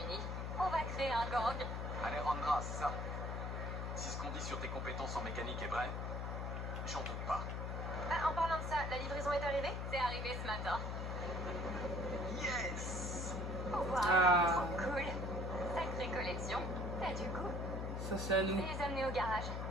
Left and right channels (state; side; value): noise; left; hum, 3 dB below the sound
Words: On va créer un gang. Alejandra, c'est ça. Si ce qu'on dit sur tes compétences en mécanique est vrai, j'en doute pas. Ah, en parlant de ça, la livraison est arrivée? C'est arrivé ce matin. Yes. Wow, Ah. trop cool. Sacrée collection. T'as du goût. Ça, c'est à Je nous. vais les amener au garage.